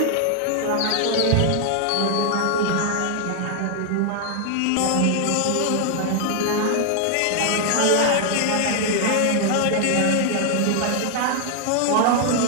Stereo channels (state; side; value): different; both; correlation 0.00